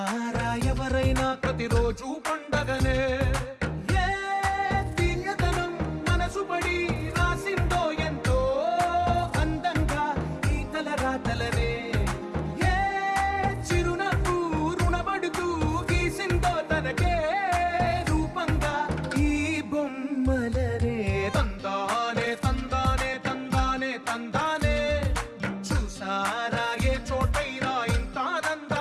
ఎవరైనా ప్రతిరోజు పండగనే ఏ దివ్యతనం మనసు పడి రాసిందో ఎంతో అందంగా ఈ తలరాతలనే ఏ చిరునవ్వు రుణపడుతూ గీసిందో తనకే రూపంగా ఈ బొమ్మలనే తందానే తందానే తందానే తందానే చూసారా ఏ చోటైనా ఇంత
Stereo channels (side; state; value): both; identical; correlation 1.00